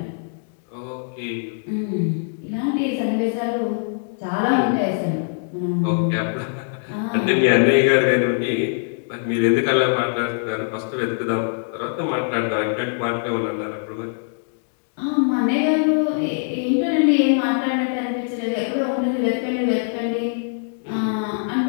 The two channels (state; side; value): silent; right; digital silence